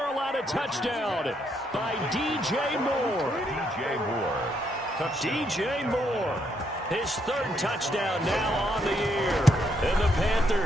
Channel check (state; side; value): normal; both; correlation 0.75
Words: touchdown by DJ Moore. DJ Moore. His 3rd touchdown now on the year. And the